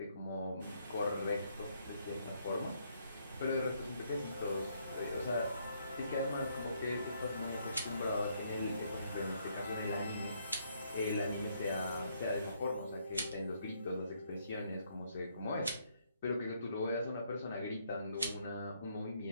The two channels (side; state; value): both; inverted; correlation -0.71